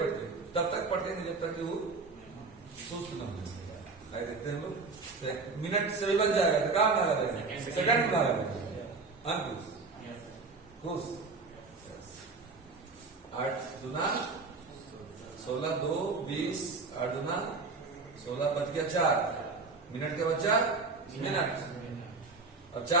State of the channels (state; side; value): quieter; left; 4.1 dB